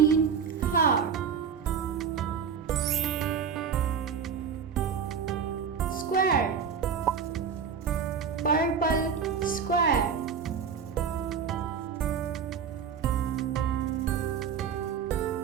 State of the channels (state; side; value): quieter; left; 6.9 dB